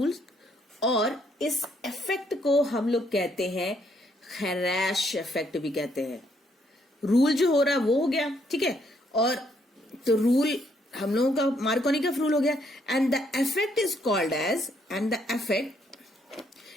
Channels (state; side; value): normal; both; correlation 0.71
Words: और इस इफेक्ट को हम लोग कहते हैं खैराश इफेक्ट भी कहते हैं. रूल जो हो रहा है वो हो गया, ठीक है, और तो रूल हम लोगों का मार्कोनिकफ रूल हो गया. And the effect is called as, and the effect,